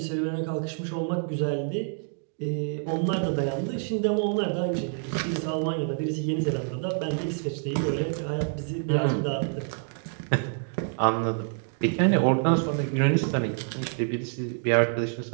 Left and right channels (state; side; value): silent; left; 60 dB below the other